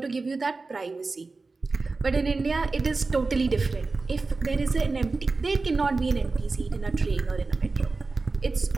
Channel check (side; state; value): left; quieter; 3.8 dB